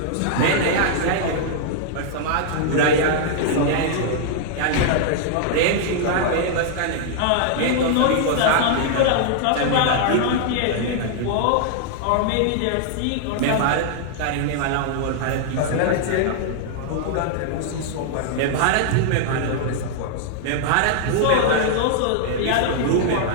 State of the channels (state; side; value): different; both; correlation -0.01